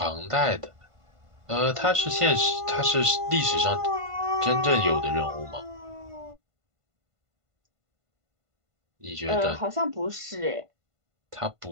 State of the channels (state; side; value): late; left; 1.5 ms